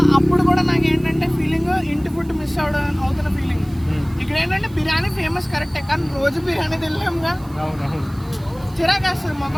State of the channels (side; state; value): right; noise; hiss, 25 dB below the sound